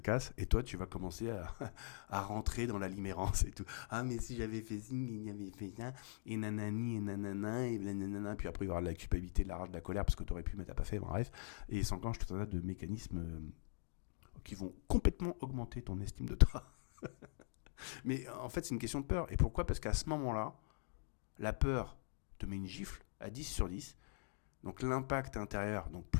et toi tu vas commencer à rentrer dans la limérance et tout. Ah mais si j'avais fait ci, il y avait fait ça, et nanani, et nanana, et nanana, puis après il va y avoir de la culpabilité, de la rage, de la colère, parce que t'aurais pu mais t'as pas fait, bref. Et il s'enclenche tout un tas de mécanismes qui vont complètement augmenter ton estime de toi. Mais en fait c'est une question de peur. Et pourquoi ? Parce qu'à ce moment-là, la peur te met une gifle à 10 sur 10, donc l'impact intérieur, donc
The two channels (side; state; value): right; silent; digital silence